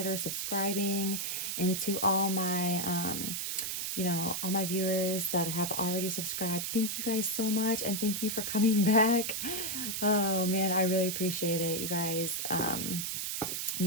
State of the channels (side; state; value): right; noise; hiss, 2 dB below the sound